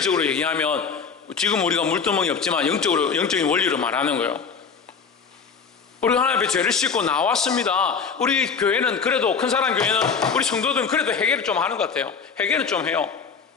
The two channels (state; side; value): quieter; right; 5.8 dB